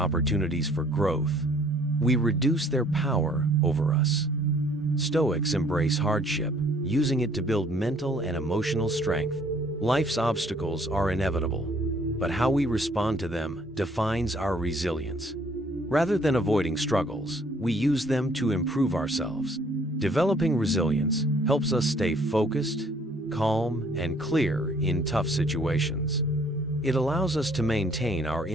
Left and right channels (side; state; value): both; normal; correlation 0.60